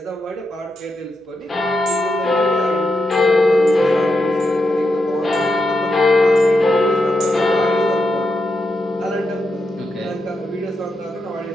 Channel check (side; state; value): both; normal; correlation 0.85